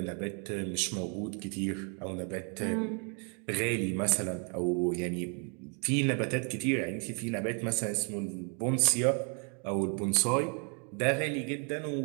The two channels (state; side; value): quieter; left; 38.9 dB